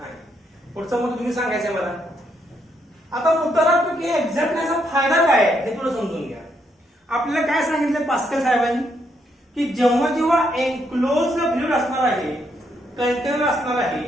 आहे. पुढचं मग तुम्ही सांगायचंय मला. आता मुद्दा की एक्झॅक्टनेसचा फायदा काय हे थोडं समजून घ्या. आपल्याला काय सांगितलं पास्कल साहेबांनी की जेव्हा एनक्लोज फ्लुइड असणार आहे, कंटेनर असणार आहे,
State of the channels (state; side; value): normal; both; correlation 0.76